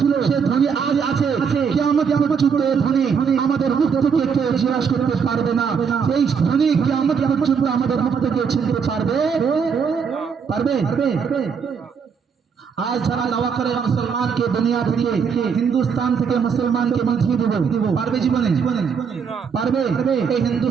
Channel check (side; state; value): left; quieter; 6.4 dB